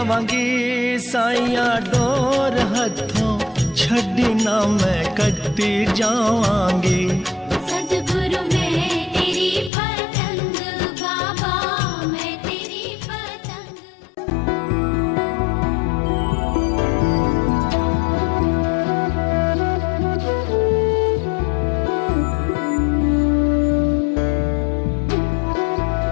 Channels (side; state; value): right; drops out; at 9.7 s